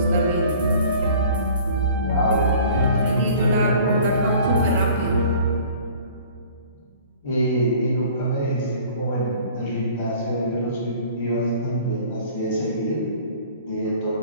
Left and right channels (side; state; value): both; inverted; correlation -0.48